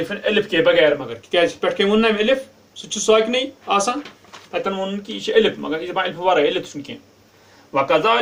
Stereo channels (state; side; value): identical; both; correlation 1.00